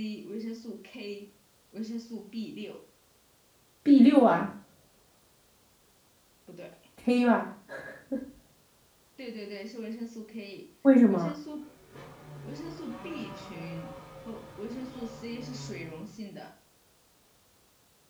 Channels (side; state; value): both; identical; correlation 1.00